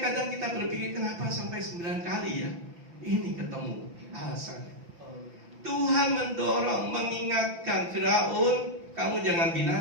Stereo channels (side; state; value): left; late; 5.9 ms